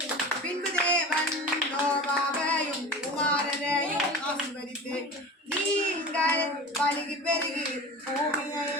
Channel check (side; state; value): both; normal; correlation 0.33